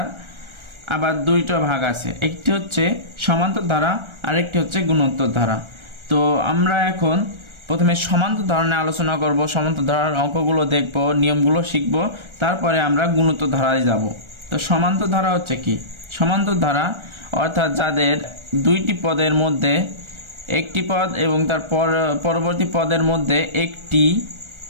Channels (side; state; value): left; late; 1.3 ms